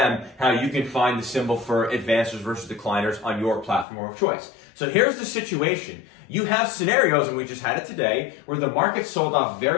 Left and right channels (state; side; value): drops out; right; at 3.9 s